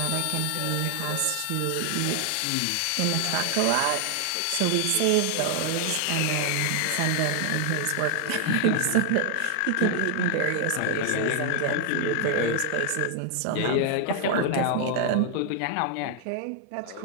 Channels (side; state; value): both; different; correlation 0.00